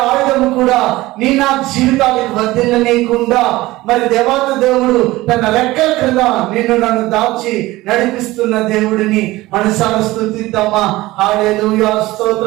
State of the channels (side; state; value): left; quieter; 18.6 dB